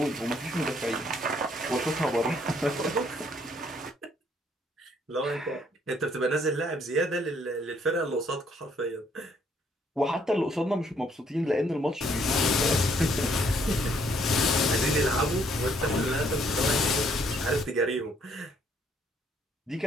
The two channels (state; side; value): normal; both; correlation 0.67